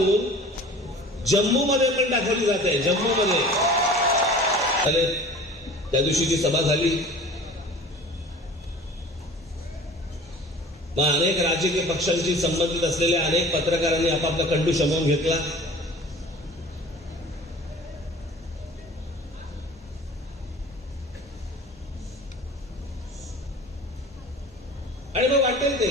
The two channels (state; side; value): normal; both; correlation 0.42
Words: जम्मूमध्ये पण दाखवली जाते. जम्मूमध्ये त्या दिवशी जी सभा झाली, मग अनेक राजकीय पक्षांशी संबंधित असलेल्या अनेक पत्रकारांनी आपापला कंडू शमवून घेतला. आणि मग वाटेल ते